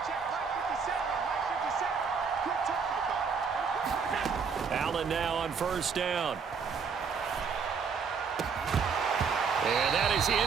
Allen now on 1st down. And that is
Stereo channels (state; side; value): quieter; left; 5.8 dB